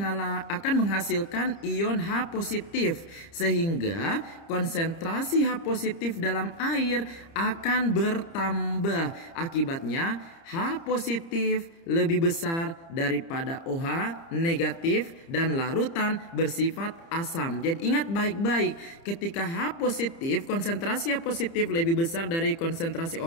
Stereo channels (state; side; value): late; right; 30 ms